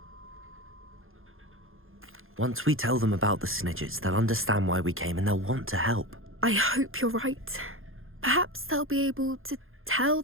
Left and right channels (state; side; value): late; left; 0.60 ms